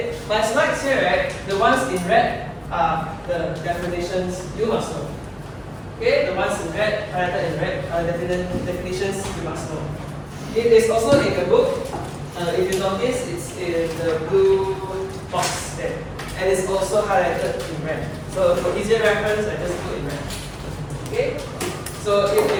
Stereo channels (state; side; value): identical; both; correlation 1.00